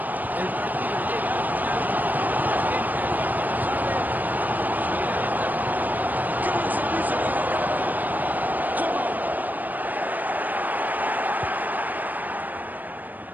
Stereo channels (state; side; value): late; left; 0.084 ms